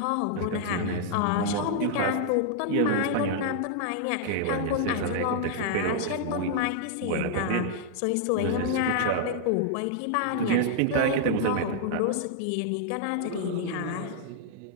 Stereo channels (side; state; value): both; different; correlation -0.01